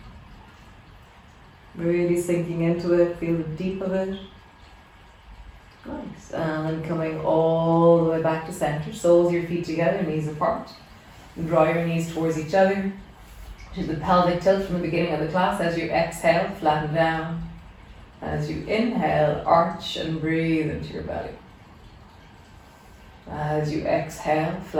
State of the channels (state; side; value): identical; both; correlation 1.00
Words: Really sinking into it. Feel the deep of it. Nice. And then coming all the way back to center. Soles of your feet together, knees apart. And draw your knees towards each other. Do the pelvic tilt from the beginning of the class. As you exhale, flatten down. As you inhale, arch and breathe into your belly. As you exhale,